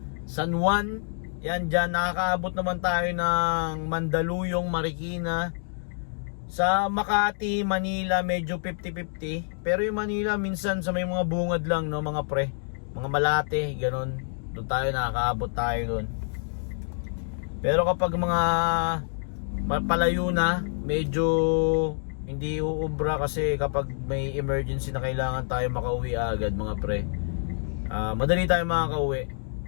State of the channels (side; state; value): right; silent; 60 dB below the other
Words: San Juan. Yan dyan, nakakaabot naman tayo ng Mandaluyong, Marikina. Sa Makati, Manila, medyo 50-50. Pero yung Manila, minsan sa may mga bungad lang, no, mga pre. Mga Malate, ganun. Doon tayo, nakakaabot tayo doon. Pero kapag mga palayo na, medyo hindi uubra kasi kapag may emergency na kailangan tayo makauwi agad, mga pre. Madali tayo makakauwi.